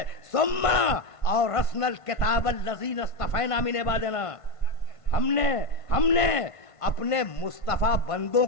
ثم اورثنا الکتاب الذین اصطفینا من عبادنا, ہم نے اپنے مصطفیٰ بندوں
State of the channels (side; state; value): right; late; 1.5 ms